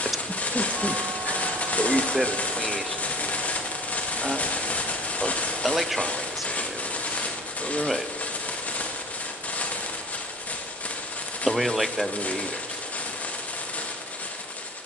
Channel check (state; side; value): normal; both; correlation 0.42